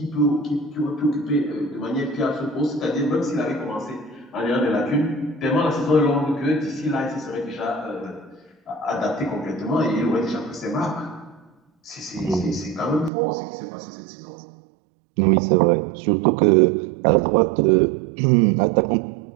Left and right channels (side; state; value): left; drops out; at 13.1 s